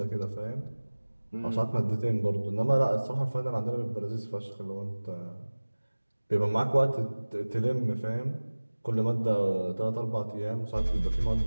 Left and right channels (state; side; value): inverted; both; correlation -1.00